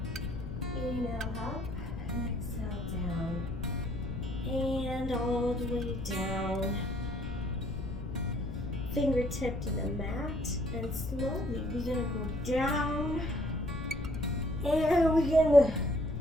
Inhale up and exhale down. And all the way down. Fingertip to the mat, and slowly we're gonna go down, and we're gonna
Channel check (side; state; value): left; noise; rumble, 7 dB below the sound